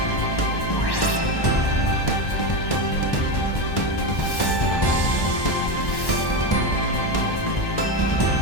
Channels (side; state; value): right; late; 1.1 ms